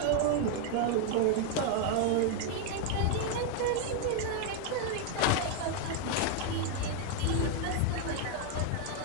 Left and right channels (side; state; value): both; different; correlation 0.00